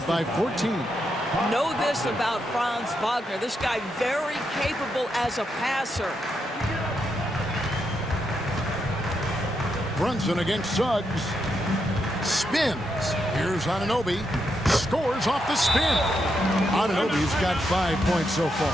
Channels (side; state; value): both; normal; correlation 0.82